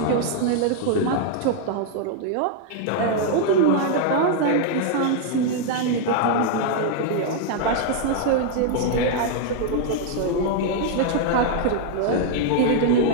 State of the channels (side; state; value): both; different; correlation 0.00